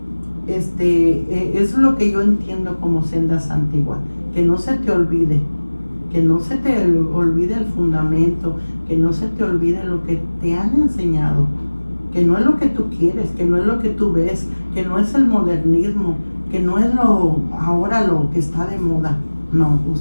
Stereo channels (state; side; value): inverted; both; correlation -1.00